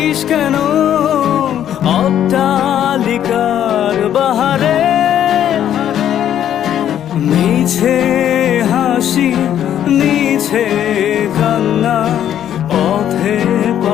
কেন অট্টালিকার বাহারে? মিছে হাসি মিছে কান্না পথে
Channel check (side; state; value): right; quieter; 10.5 dB